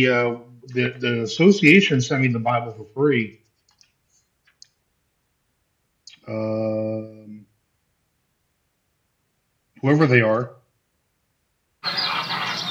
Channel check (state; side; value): identical; both; correlation 1.00